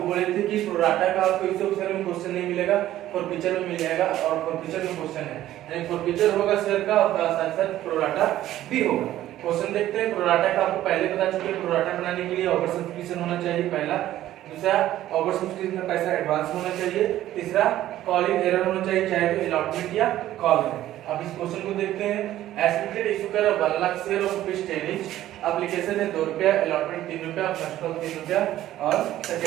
बोले थे कि प्रोराटा का आपको इशू ऑफ शेयर में क्वेश्चन नहीं मिलेगा, फॉर पिचर में मिल जाएगा और फॉर पिचर में क्वेश्चन है, यानी फॉर पिचर होगा शेयर का और साथ साथ प्रोराटा भी होगा। क्वेश्चन देखते हैं। प्रोराटा का आपको पहले बता चुके हैं, प्रोराटा बनाने के लिए ओवर सब्सक्रिप्शन होना चाहिए पहला, दूसरा ओवर सब्सक्रिप्शन का पैसा एडवांस होना चाहिए, तीसरा कॉलिंग एरर होना चाहिए, चाहे तो अलॉटमेंट या कॉल है। अब इस क्वेश्चन को देखते हैं। एस्टिमेटेड इशू कर 1 lakh share of rupees 10 each, application है 2 रुपया, अलॉटमेंट 3 रुपया, फर्स्ट कॉल 3 रुपया और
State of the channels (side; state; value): left; quieter; 13.6 dB